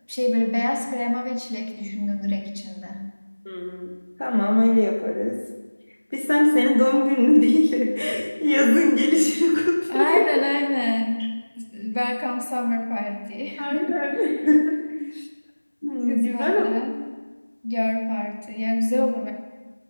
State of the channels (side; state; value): both; inverted; correlation -1.00